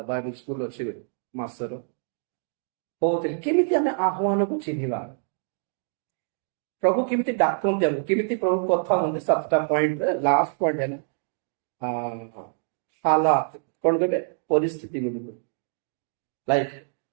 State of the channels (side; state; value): left; silent; digital silence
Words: स्कूल अच्छी मासर होते केमिति आमे आह्वान को चिन्हिबा प्रभु केमिति डाकंती हमको केमिति प्रभु कथा होते 7टा पॉइंट लास्ट पॉइंट है हालात कौन कहबे परिस्थिति गुडी को लाइफ